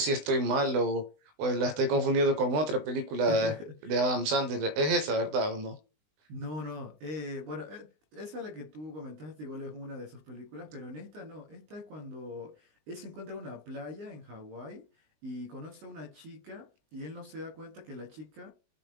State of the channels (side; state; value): left; late; 20 ms